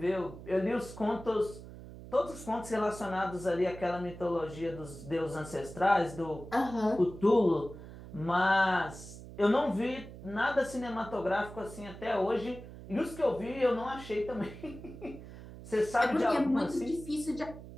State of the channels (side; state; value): right; noise; hum, 14 dB below the sound